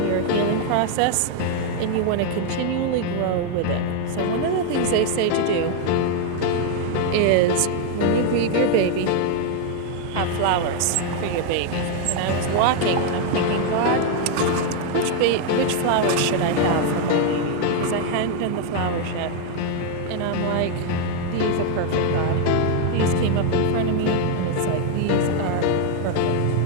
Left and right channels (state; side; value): different; both; correlation 0.00